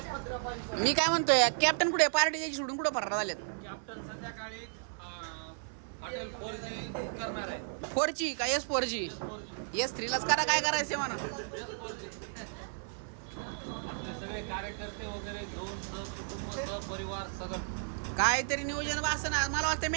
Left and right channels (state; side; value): silent; left; 55 dB below the other